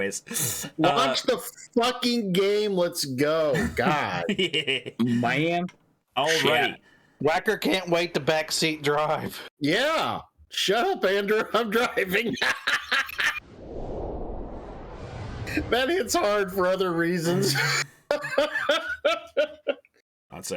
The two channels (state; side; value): identical; both; correlation 1.00